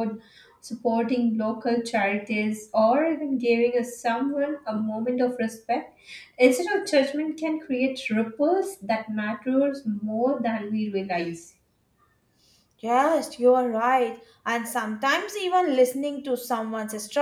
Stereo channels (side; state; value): both; identical; correlation 1.00